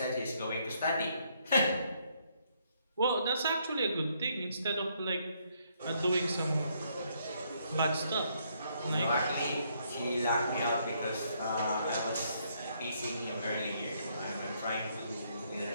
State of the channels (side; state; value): both; inverted; correlation -0.71